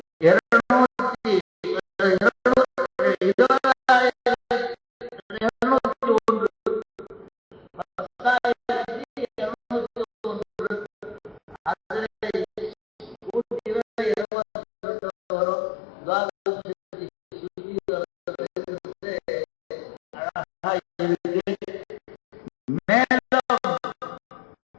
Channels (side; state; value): right; drops out; at 14.2 s